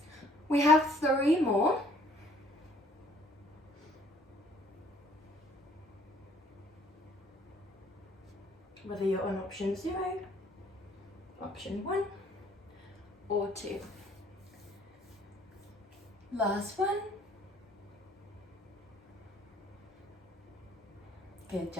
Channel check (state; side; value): normal; both; correlation 0.59